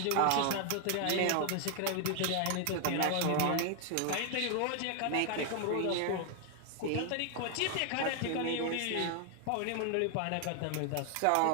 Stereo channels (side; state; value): both; different; correlation 0.00